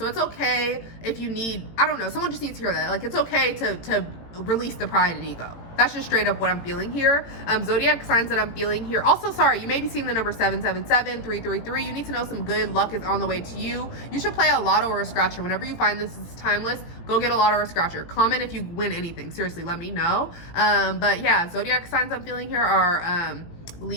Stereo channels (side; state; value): right; late; 18 ms